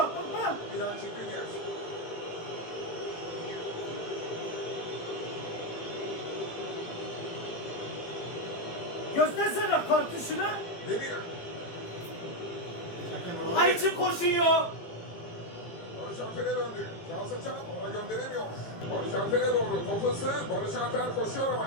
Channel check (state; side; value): late; right; 18 ms